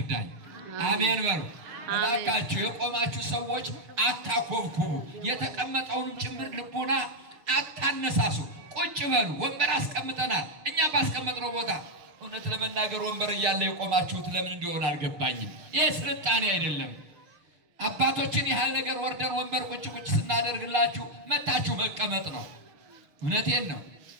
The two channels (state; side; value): late; left; 6.7 ms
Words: አሜን በሉ እባካችሁ። የቆማችሁ ሰዎች አታኮብኩቡ፣ የተቀመጠውንም ጭምር ልቡና አታነሳሱ። ቁጭ በሉ። ወንበር አስቀምጠናል እኛ ባስቀመጥነው ቦታ። እውነት ለመናገር ወንበር እያለ የቆማችሁት ለምን እንደሆነ አልገባኝም። ይህ ስልጣኔ አይደለም። አባቶችን ያህል ነገር ወርደን ወንበር ቁጭ ቁጭ ስናደርግላችሁ መታችሁ መቀመጥ ነው። እውነቴን ነው።